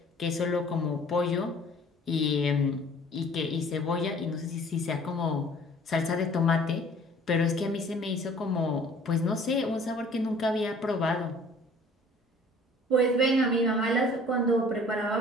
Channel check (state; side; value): normal; both; correlation 0.52